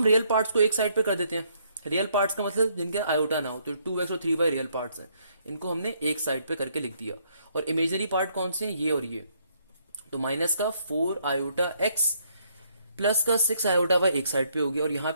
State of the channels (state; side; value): inverted; both; correlation -0.70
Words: रियल पार्ट्स को एक साइड पे कर देते हैं। रियल पार्ट्स का मतलब जिनके आयोटा ना हो, तो 2x और 3y रियल पार्ट्स हैं, इनको हमने एक साइड पे करके लिख दिया। और इमेजनरी पार्ट कौन से हैं, ये और ये। तो माइनस का 4 आयोटा x प्लस का 6 आयोटा वाई एक साइड पे हो गया, और यहाँ